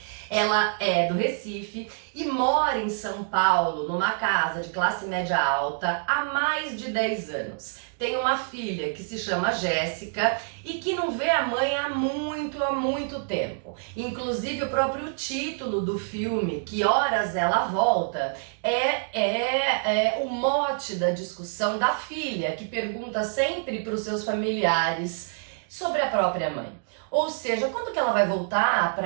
Ela é do Recife e mora em São Paulo, numa casa de classe média alta, há mais de 10 anos. Tem uma filha que se chama Jéssica e que não vê a mãe há muito tempo. Inclusive o próprio título do filme, Que Horas Ela Volta, é o mote da discussão da filha, que pergunta sempre para os seus familiares sobre a própria mãe. Ou seja, quando que ela vai voltar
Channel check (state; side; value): silent; left; digital silence